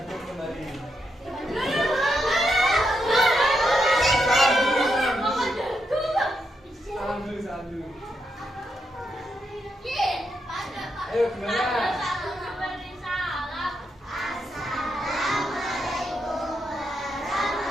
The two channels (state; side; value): normal; both; correlation 0.82